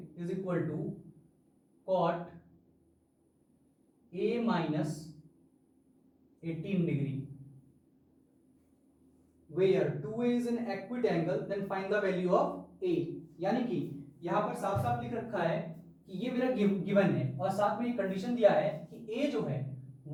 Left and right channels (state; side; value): identical; both; correlation 1.00